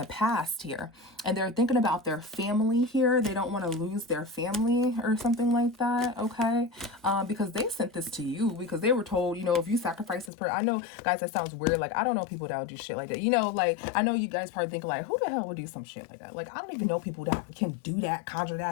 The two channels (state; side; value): drops out; right; at 10.3 s